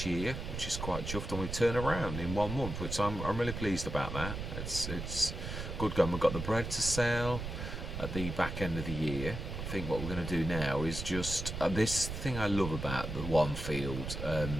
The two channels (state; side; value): noise; right; rumble, 6 dB below the sound